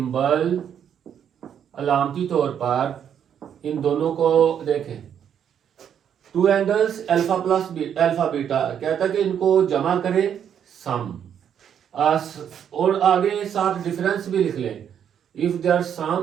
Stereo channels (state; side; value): quieter; left; 8.8 dB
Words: अलामती तौर पर इन दोनों को देखें, 2 angles alpha plus alpha beta, कहता है कि इनको जमा करें सम, और आगे साथ डिफरेंस भी लिख लें। इफ देयर